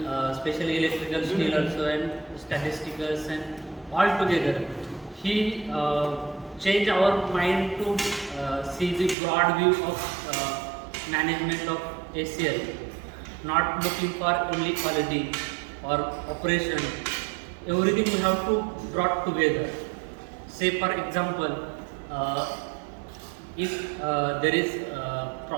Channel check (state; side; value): drops out; left; at 9.2 s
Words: electrical skill also and statisticals and all together. He changed our mind to see the broad view of management of ACL, not looking for only quality or operation. Everything we have to brought together. Say for example, if there is a